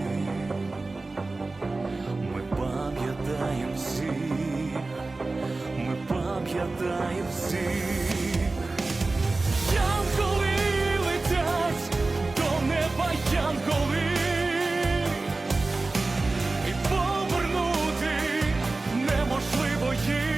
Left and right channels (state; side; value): quieter; left; 3.4 dB